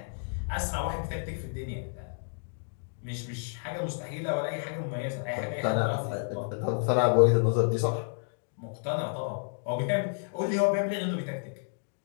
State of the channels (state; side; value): silent; right; digital silence